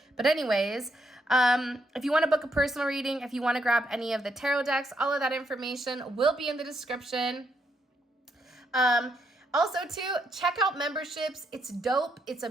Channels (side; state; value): both; normal; correlation 0.77